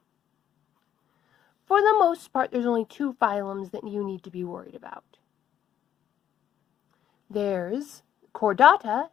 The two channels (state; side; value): quieter; right; 10.3 dB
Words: For the most part, there's only 2 phylums that you need to be worried about. There's Chordata